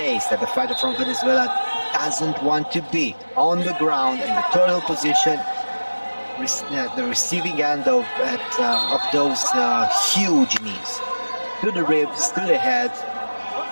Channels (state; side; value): inverted; both; correlation -1.00